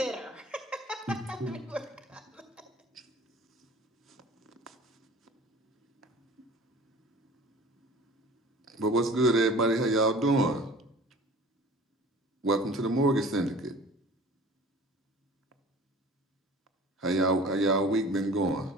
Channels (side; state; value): both; normal; correlation 0.44